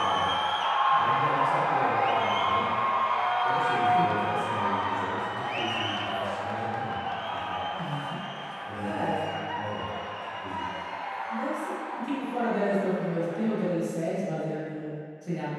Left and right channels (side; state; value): both; identical; correlation 1.00